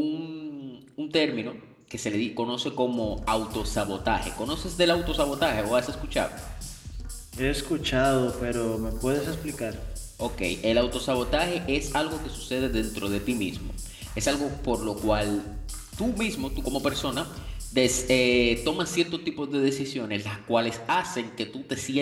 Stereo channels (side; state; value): both; identical; correlation 1.00